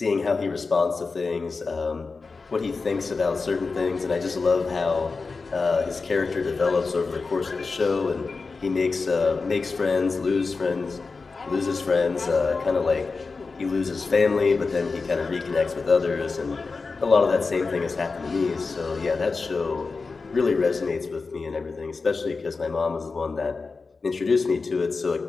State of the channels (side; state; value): right; quieter; 4.3 dB